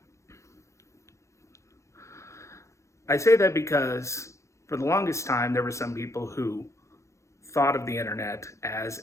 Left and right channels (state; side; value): late; right; 0.14 ms